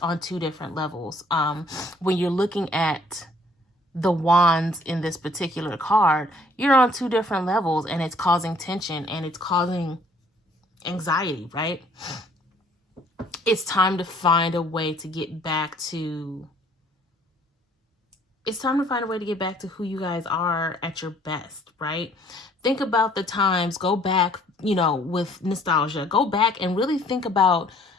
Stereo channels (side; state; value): both; normal; correlation 0.60